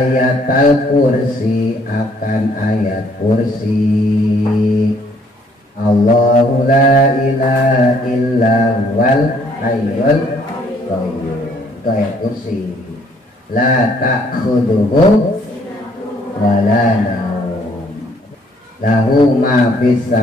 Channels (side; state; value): both; normal; correlation 0.64